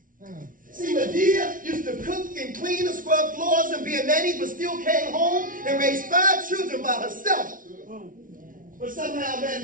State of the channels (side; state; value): left; late; 0.39 ms